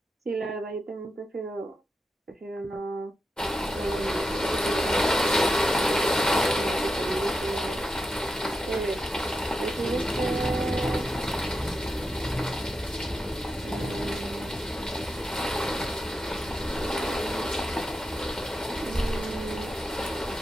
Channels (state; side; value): normal; both; correlation 0.87